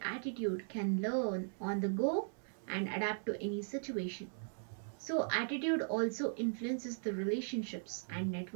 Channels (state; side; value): silent; left; 52 dB below the other